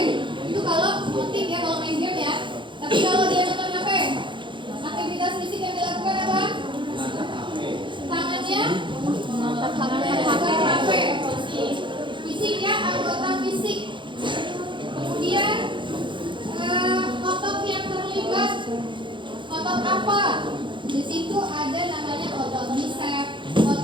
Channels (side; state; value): left; late; 0.23 ms